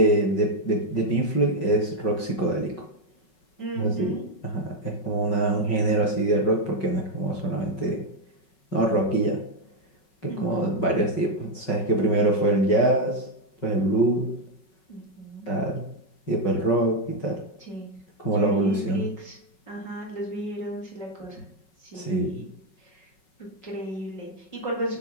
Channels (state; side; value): late; right; 5.4 ms